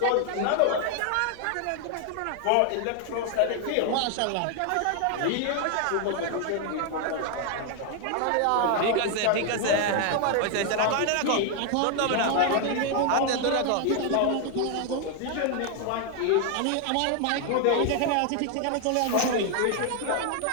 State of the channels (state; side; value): different; both; correlation 0.00